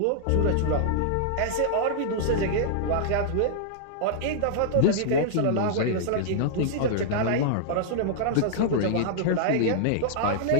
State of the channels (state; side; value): different; both; correlation -0.01